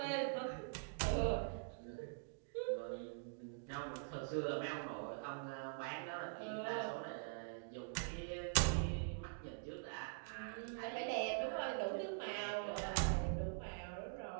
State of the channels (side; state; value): left; silent; digital silence